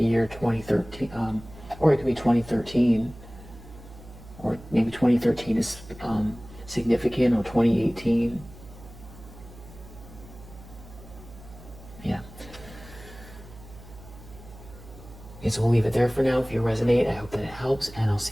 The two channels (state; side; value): noise; right; hum, 18 dB below the sound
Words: year 2013, or it could be 2013, or maybe 2013 is significant, or 2018. Yeah. Okay, so we'll leave it there for now. If you resonate, I hope that it helps, and I'll